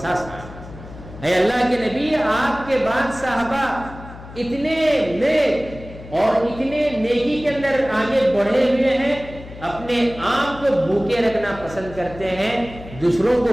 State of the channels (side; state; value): left; noise; hum, 15 dB below the sound